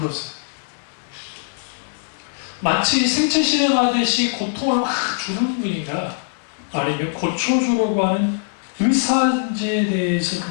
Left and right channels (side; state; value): right; silent; 59 dB below the other